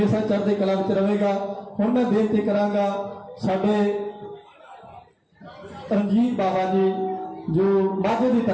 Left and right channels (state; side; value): identical; both; correlation 1.00